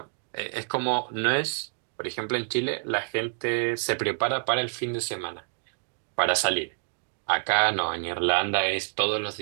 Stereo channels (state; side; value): silent; left; 60 dB below the other